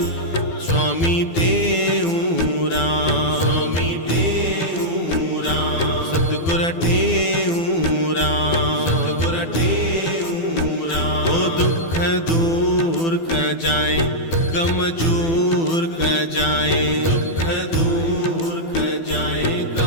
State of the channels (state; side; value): late; right; 12 ms